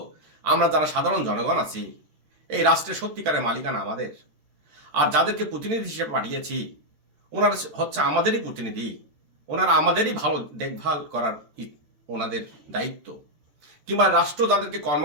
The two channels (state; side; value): late; left; 13 ms